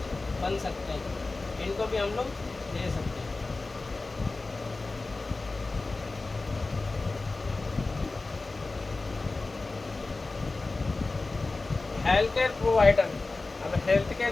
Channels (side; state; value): right; quieter; 3.5 dB